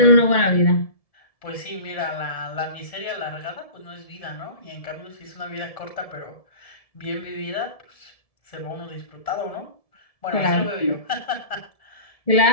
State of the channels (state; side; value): late; right; 1.7 ms